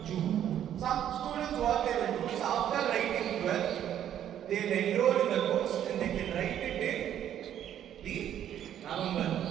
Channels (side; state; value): left; quieter; 10.5 dB